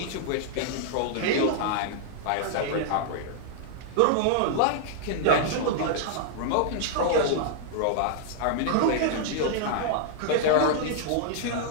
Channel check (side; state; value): both; different; correlation -0.01